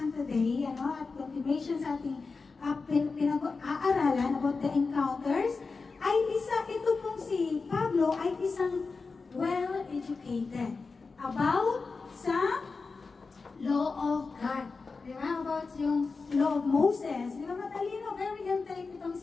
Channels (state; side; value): quieter; right; 4.3 dB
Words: today, at continuation sa ating pinag-aaralan about the encounters, ay ito pong si Pablo ay isang well-educated about sa law of God. Di ba? About yung law of Moses. Di ba? Matalino, very intelligent itong